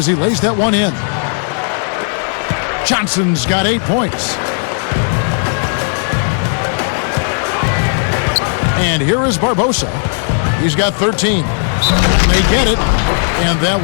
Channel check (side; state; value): right; silent; 59 dB below the other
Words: he lays that one in. Johnson's got 8 points. And here is Barbosa. He's got 13. They get it. And that